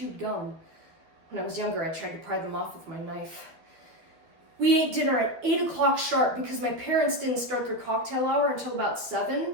gum. When I was younger, I tried to pry them off with my knife. We ate dinner at 8 o'clock sharp because my parents didn't start their cocktail hour until about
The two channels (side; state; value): left; late; 13 ms